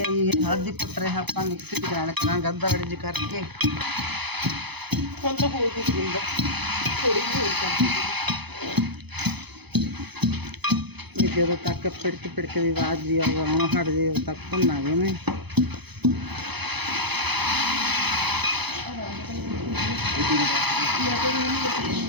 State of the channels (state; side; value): late; left; 0.98 ms